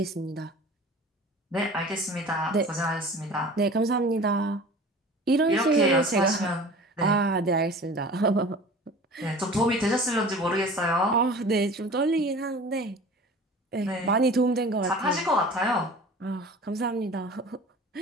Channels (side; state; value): both; normal; correlation 0.41